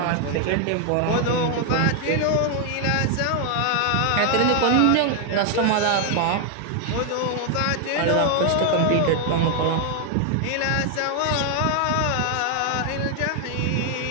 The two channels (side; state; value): both; different; correlation 0.00